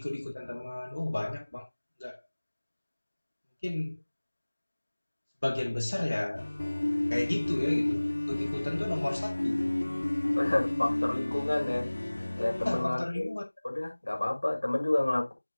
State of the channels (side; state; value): both; inverted; correlation -1.00